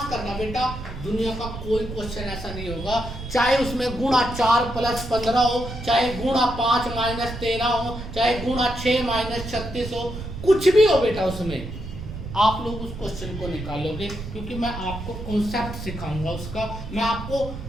करना बेटा दुनिया का कोई क्वेश्चन ऐसा नहीं होगा, चाहे उसमें गुणा 4 + 15 हो, चाहे गुणा 5 - 13 हो, चाहे गुणा 6 - 36 हो, कुछ भी हो बेटा उसमें आप लोग उस क्वेश्चन को निकालोगे, क्योंकि मैं आपको कॉन्सेप्ट सिखाऊंगा उसका। मैं आपको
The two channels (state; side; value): noise; right; rumble, 9 dB below the sound